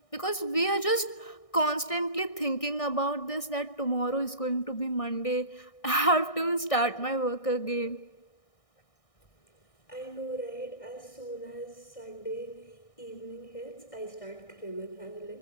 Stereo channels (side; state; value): right; late; 1.6 ms